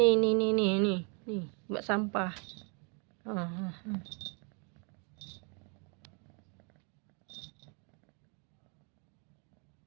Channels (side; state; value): left; quieter; 36.3 dB